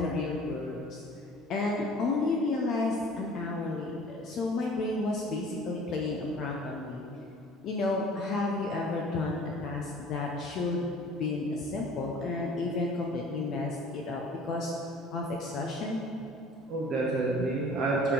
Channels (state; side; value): normal; both; correlation 0.48